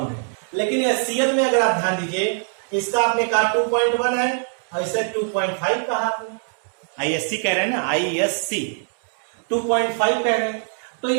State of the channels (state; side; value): silent; left; 61 dB below the other